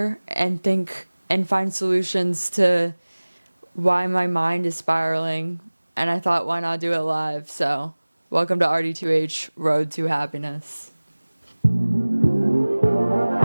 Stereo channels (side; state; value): both; inverted; correlation -1.00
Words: and think and find solutions to why my mind is spiraling. And I thought, why not do it live? So, welcome to RD2H Road to Happiness.